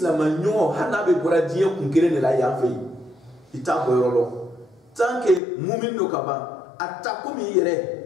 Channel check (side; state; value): right; drops out; at 5.4 s